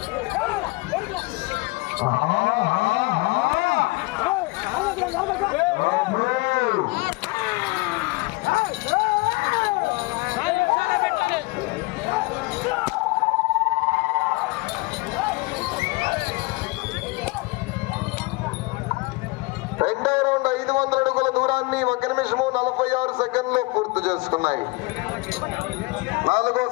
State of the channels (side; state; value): right; quieter; 24.9 dB